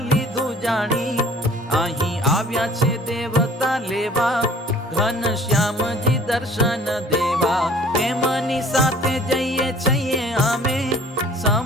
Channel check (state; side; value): normal; both; correlation 0.51